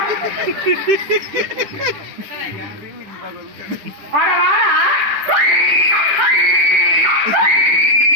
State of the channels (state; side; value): late; left; 10 ms